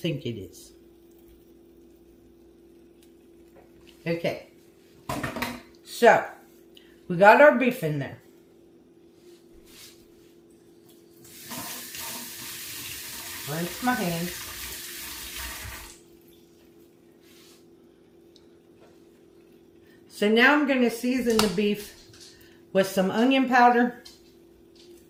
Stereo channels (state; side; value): identical; both; correlation 1.00